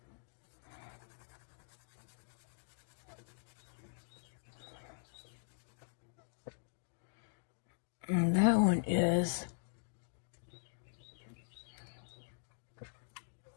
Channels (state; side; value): silent; right; digital silence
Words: And that one is